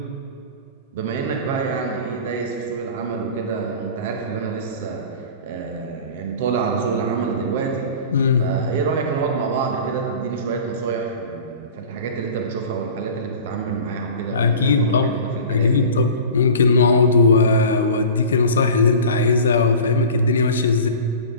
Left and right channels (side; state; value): both; inverted; correlation -0.38